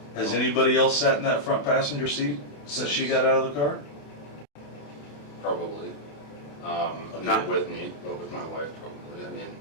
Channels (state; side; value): late; right; 28 ms